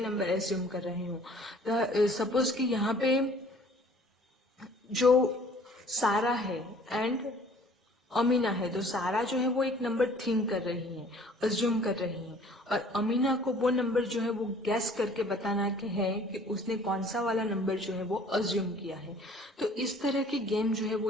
नंबर अज्यूम कर रही हूँ। सपोज कि यहाँ पे जो सारा है एंड अमीना है, तो सारा जो है वो एक नंबर थिंक कर रही है, अज्यूम कर रही है, और अमीना को वो नंबर जो है वो गैस करके बताना है कि उसने कौन सा वाला नंबर जो है वो अज्यूम किया है। तो इस तरह की गेम जो है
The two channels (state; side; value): normal; both; correlation 0.53